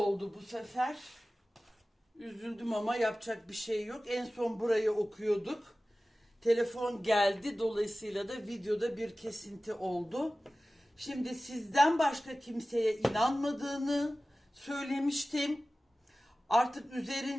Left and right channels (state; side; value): normal; both; correlation 0.96